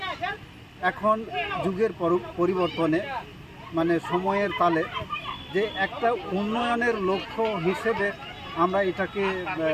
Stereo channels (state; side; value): identical; both; correlation 1.00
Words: এখন যুগের পরিবর্তনে সময়ের তালে যে একটা উন্নয়নের লক্ষ্য হিসেবে আমরা এটাকে